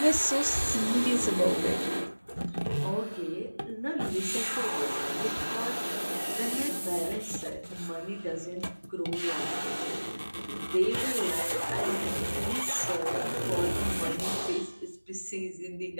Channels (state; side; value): inverted; both; correlation -1.00